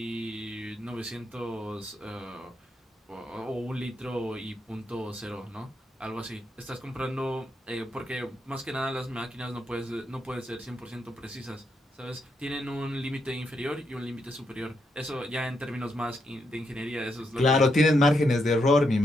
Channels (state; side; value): normal; both; correlation 0.80